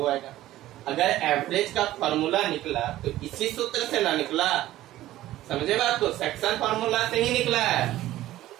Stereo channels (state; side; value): quieter; left; 14.9 dB